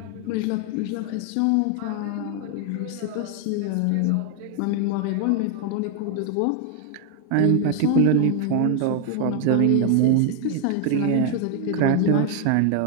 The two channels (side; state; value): both; different; correlation 0.00